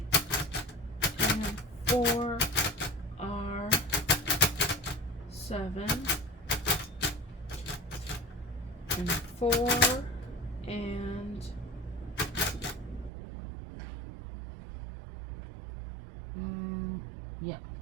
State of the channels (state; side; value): drops out; left; at 13.1 s